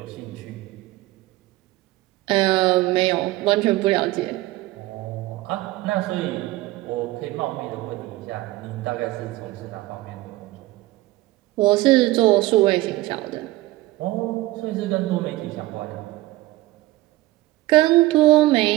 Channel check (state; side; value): quieter; left; 18.0 dB